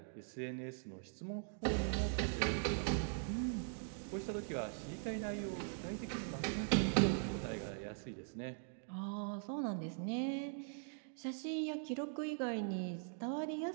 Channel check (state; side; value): silent; left; digital silence